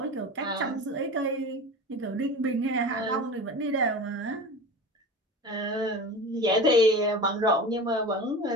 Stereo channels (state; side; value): normal; both; correlation 0.32